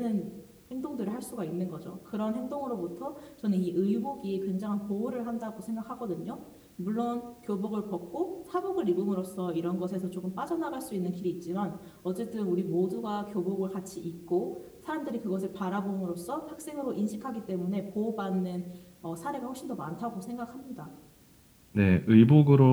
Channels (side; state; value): both; identical; correlation 1.00